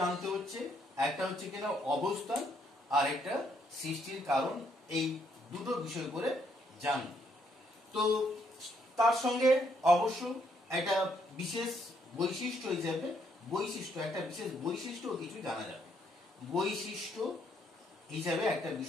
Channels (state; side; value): normal; both; correlation 0.72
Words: জানতে হচ্ছে, একটা হচ্ছে কিনা অবস্থান আর একটা সৃষ্টির কারণ। এই দুটো বিষয় করে জানবে। তো তার সঙ্গে অবশ্য একটা বিশেষ বৈশিষ্ট্য হিসেবে একটা বিশেষ বৈশিষ্ট্য কিছু জানা যাবে। বৈশিষ্ট্য হিসাবে একটা